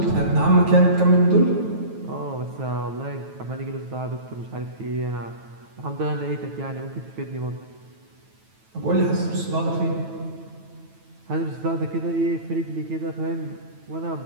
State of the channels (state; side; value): late; left; 9.1 ms